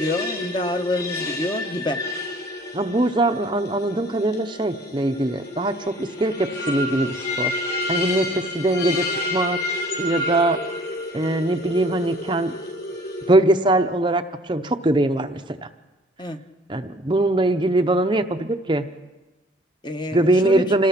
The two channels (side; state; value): both; normal; correlation 0.54